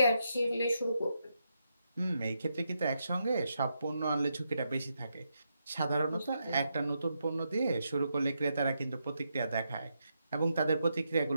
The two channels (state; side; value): inverted; both; correlation -0.83